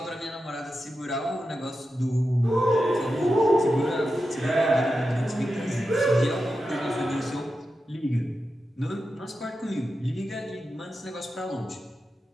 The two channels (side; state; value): both; normal; correlation 0.90